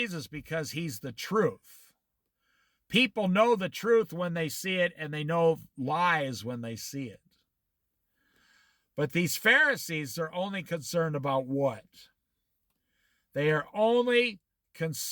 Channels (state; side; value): identical; both; correlation 1.00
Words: because he's the truth. People know the truth when they see it, and they know lies when they see it. But these Pharisees are only concerned about what? They are only